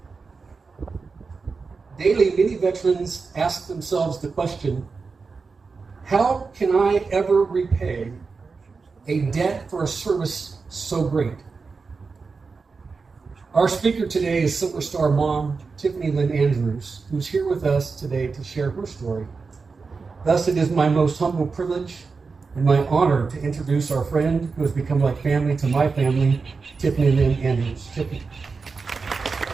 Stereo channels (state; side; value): quieter; left; 4.6 dB